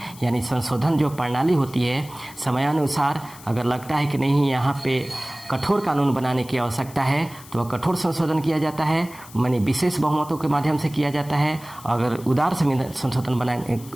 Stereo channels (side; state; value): left; noise; hiss, 19 dB below the sound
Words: यानी संशोधन जो प्रणाली होती है समयानुसार अगर लगता है कि नहीं यहाँ पे कठोर कानून बनाने की आवश्यकता है तो वह कठोर संशोधन किया जाता है, माने विशेष बहुमतों के माध्यम से किया जाता है। अगर उदार संशोधन